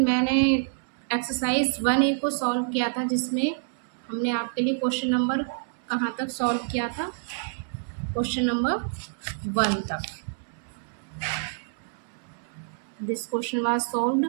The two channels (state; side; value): silent; left; 60 dB below the other